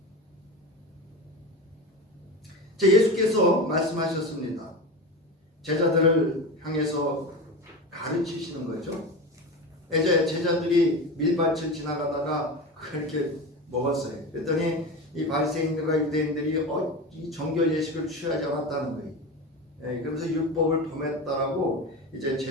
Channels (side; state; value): both; normal; correlation 0.26